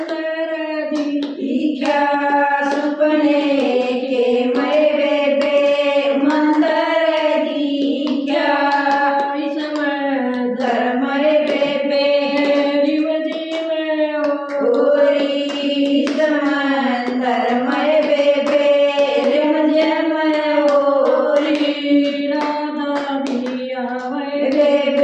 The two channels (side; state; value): both; identical; correlation 1.00